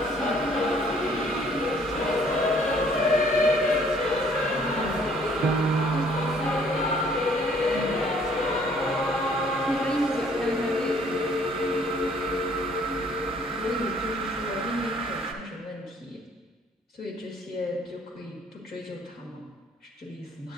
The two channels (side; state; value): both; normal; correlation 0.60